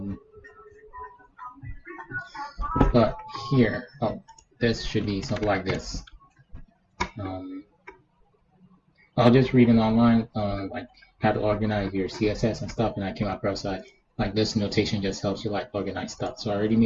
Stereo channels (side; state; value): both; identical; correlation 1.00